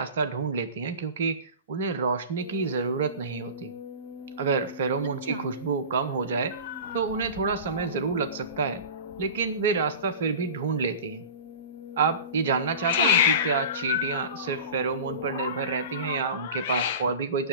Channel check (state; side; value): inverted; both; correlation -0.34